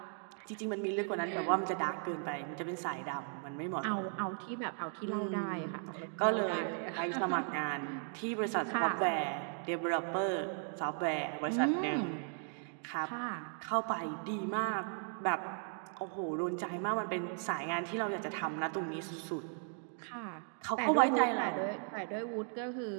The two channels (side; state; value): left; silent; 53 dB below the other